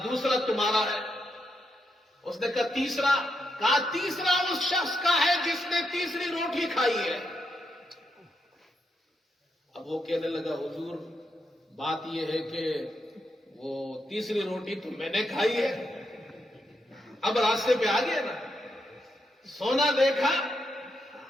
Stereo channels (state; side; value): normal; both; correlation 0.82